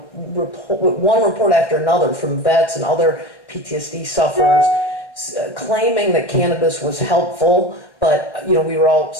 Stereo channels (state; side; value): late; right; 1.1 ms